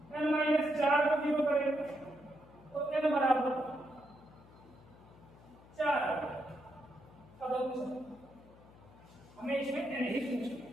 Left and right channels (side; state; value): left; noise; hum, 23 dB below the sound